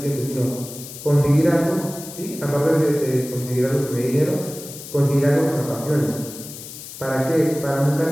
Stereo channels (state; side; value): noise; left; hiss, 13 dB below the sound